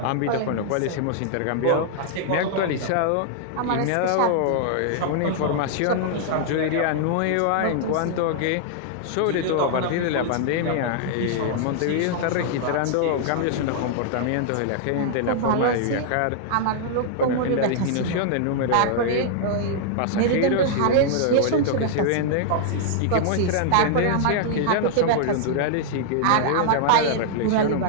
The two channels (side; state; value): both; different; correlation -0.01